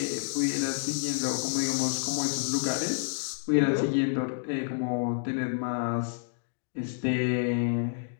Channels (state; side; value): silent; right; digital silence